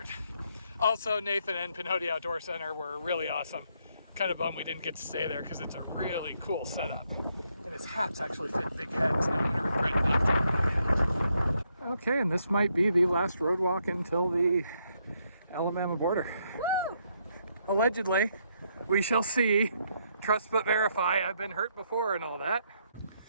Also, Nathan and Pinhoti Outdoors Center were really awesome. Kind of bummed we didn't get to stay there because it's a really cool setup. And his hats actually fit big heads. Now I'm gonna regret not getting my hat. Okay, and this might be the last road walk until the Alabama border. Woo! Allegedly, we shall see. Trust but verify. I've been hurt before and all that.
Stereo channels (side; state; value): both; inverted; correlation -0.75